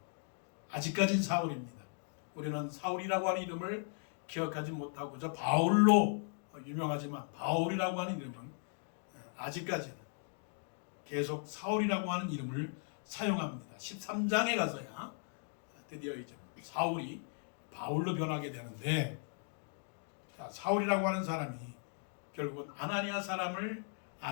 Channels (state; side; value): silent; right; 53 dB below the other